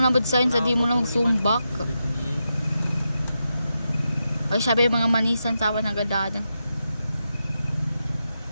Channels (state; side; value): inverted; both; correlation -0.87